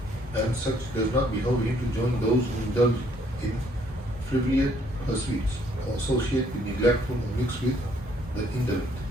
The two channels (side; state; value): both; normal; correlation 0.66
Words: and such does not behove him to join those who indulge in frivolous pursuits or associate with neglectful or mix with the indolent.